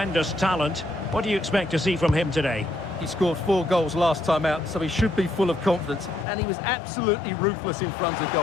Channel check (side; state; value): right; drops out; at 6.2 s